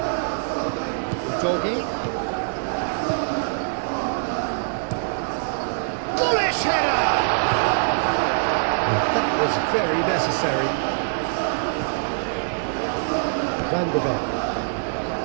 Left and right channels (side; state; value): left; silent; digital silence